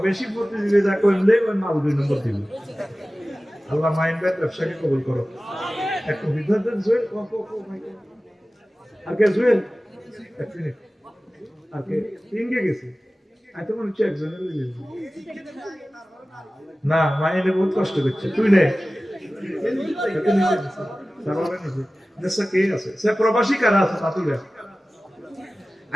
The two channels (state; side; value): normal; both; correlation 0.96